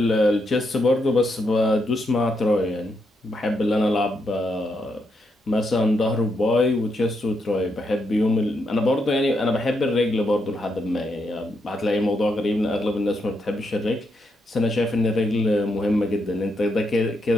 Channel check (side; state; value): both; normal; correlation 0.81